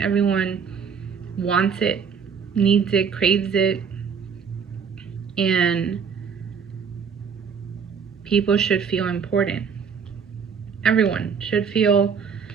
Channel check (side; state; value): left; quieter; 6.4 dB